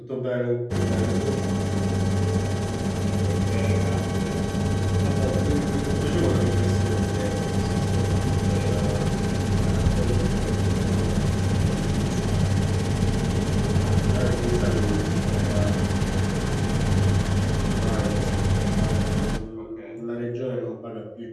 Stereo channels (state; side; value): identical; both; correlation 1.00